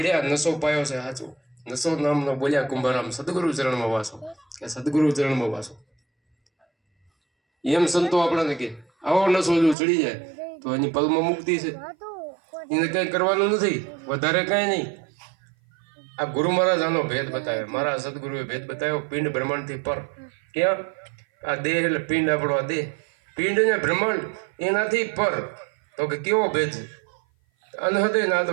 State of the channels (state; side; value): drops out; left; at 9.8 s